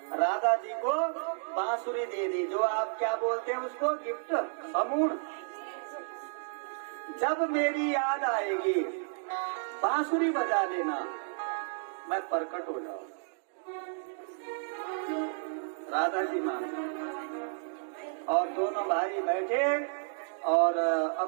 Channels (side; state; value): left; silent; digital silence